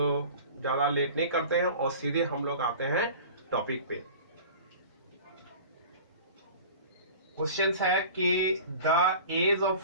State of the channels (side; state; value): both; inverted; correlation -0.40